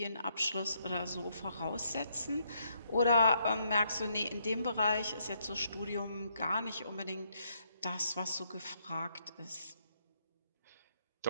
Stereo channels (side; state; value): both; inverted; correlation -0.73